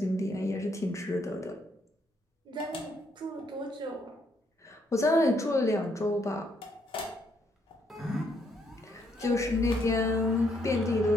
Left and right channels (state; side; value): normal; both; correlation 0.73